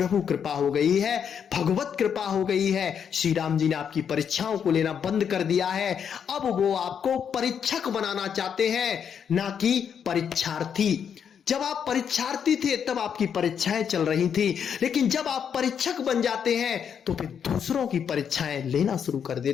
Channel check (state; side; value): quieter; right; 7.7 dB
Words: कृपा हो गई है, भगवत कृपा हो गई है। श्री राम जी ने आपकी परीक्षाओं को लेना बंद कर दिया है। अब वो आपको परीक्षक बनाना चाहते हैं, ना कि परीक्षार्थी। जब आप परीक्षार्थी थे तब आपकी परीक्षाएं चल रही थी, लेकिन जब आप परीक्षक बन जाते हैं तो फिर दूसरों की परीक्षाएं लेना शुरू कर